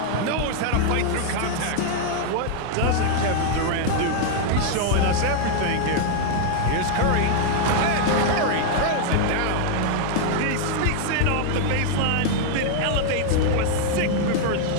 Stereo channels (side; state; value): both; different; correlation 0.00